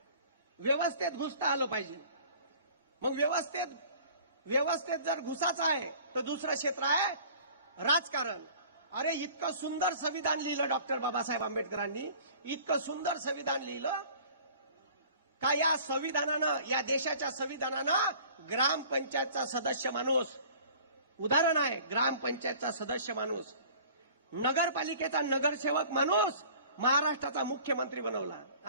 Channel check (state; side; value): inverted; both; correlation -0.48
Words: व्यवस्थेत घुसता आलं पाहिजे. मग व्यवस्थेत जर घुसाचा आहे तर दुसरं क्षेत्र आहे राजकारण. अरे इतकं सुंदर संविधान लिहिलं डॉक्टर बाबासाहेब आंबेडकरांनी, इतकं सुंदर संविधान लिहिलं का या संविधानानं, या देशाच्या संविधानानं ग्रामपंचायतचा सदस्य माणूस, उदाहरण आहे ग्रामपंचायतचा सदस्य माणूस, नगरपालिकेचा नगरसेवक माणूस महाराष्ट्राचा मुख्यमंत्री बनवला.